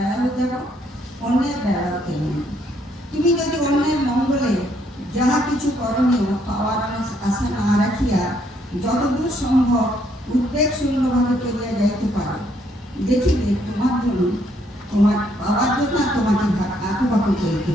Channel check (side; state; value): both; normal; correlation 0.70